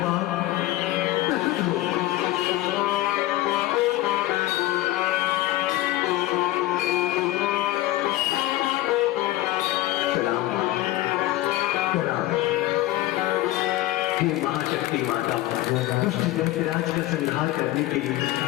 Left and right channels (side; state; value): right; quieter; 16.5 dB